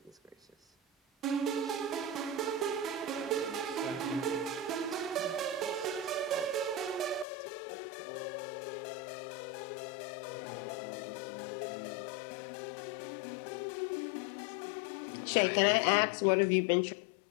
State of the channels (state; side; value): drops out; right; at 7.2 s